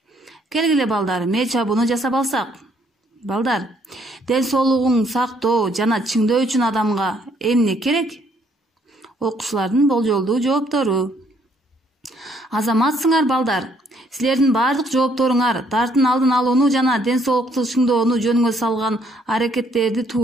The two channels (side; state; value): both; normal; correlation 0.67